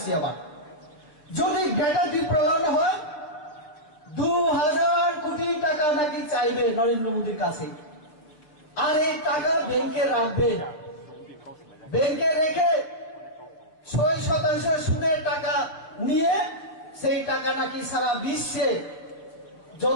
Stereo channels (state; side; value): late; right; 6.6 ms